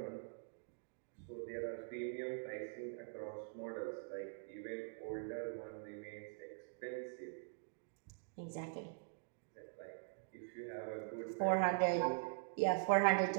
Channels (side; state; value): left; silent; digital silence